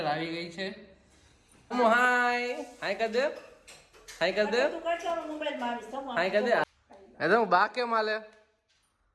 આવી ગઈ છે. ધમો હાય હાય કર દે, હાય કર દે, હાય કર દે. એ તો બા કે માલે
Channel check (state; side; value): identical; both; correlation 1.00